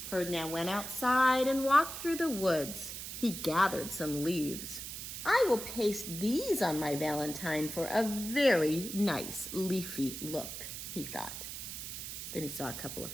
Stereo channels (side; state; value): right; noise; hiss, 8 dB below the sound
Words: Ferdinand went outside and walked through the woods. He gathered some leaves. I will paste these on my Valentine for a very nice leafy look, he thought. Then he saw a couple of